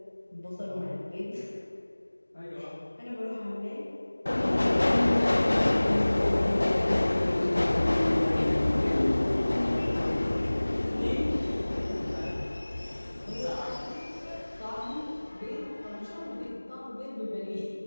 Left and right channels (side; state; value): both; inverted; correlation -1.00